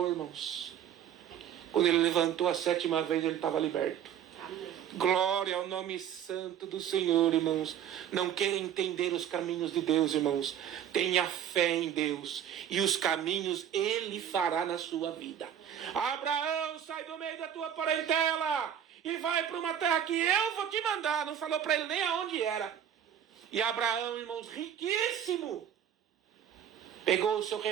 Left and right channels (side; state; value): left; quieter; 9.5 dB